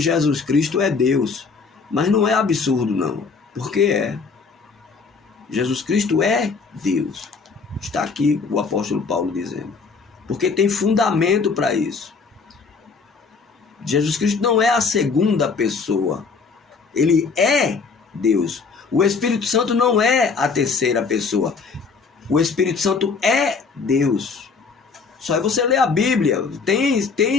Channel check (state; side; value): quieter; right; 4.9 dB